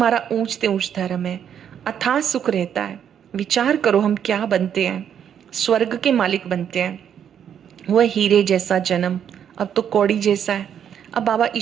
ऊंचते ऊंच धर्म है, अथाह सुख रहता है। विचार करो हम क्या बनते हैं, स्वर्ग के मालिक बनते हैं। वह हीरे जैसा जन्म अब तो कौड़ी जैसा है। अब बाबा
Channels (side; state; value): left; quieter; 8.8 dB